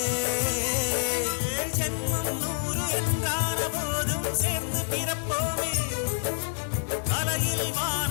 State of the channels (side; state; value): right; silent; 60 dB below the other